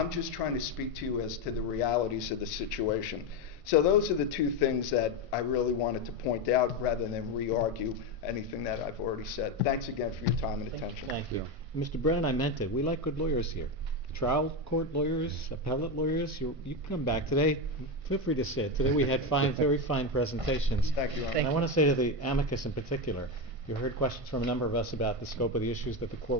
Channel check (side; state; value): left; late; 1.5 ms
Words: just trying to speak to you as to the realities of the situation. So those are the two things that I really wanted to point out rather than re-argue anything that I've already said. Thanks again for your time and attention. Thank you. Mr. Brennan, I meant it. We like good lawyers here. Trial court lawyers, appellate lawyers, you can come back. Today, feel free to sit. Today we had very fine presentations. Thank you, Your Honor. And I want to say to the amicus in particular, you heard questions from a number of us about the scope of the issues that the